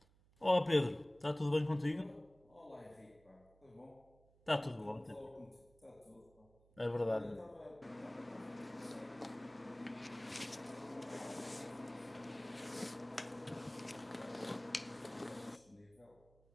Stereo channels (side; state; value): right; noise; hum, 29 dB below the sound